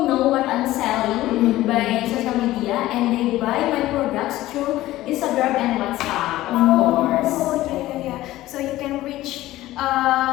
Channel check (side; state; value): right; quieter; 16.0 dB